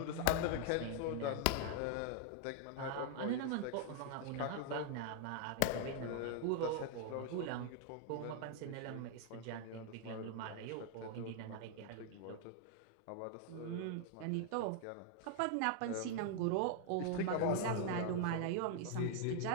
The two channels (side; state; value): both; different; correlation 0.00